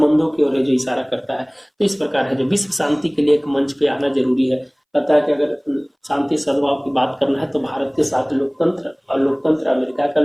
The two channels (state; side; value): identical; both; correlation 1.00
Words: की ओर जो इशारा करता है। तो इस प्रकार है जो विश्व शांति के लिए एक मंच पे आना जरूरी है। पता है कि अगर शांति सद्भाव की बात करना है तो भारत के साथ लोकतंत्र और लोकतंत्र अमेरिका का